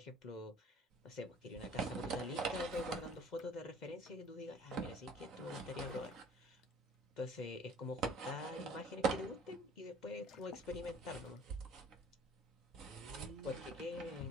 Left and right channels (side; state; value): both; normal; correlation 0.52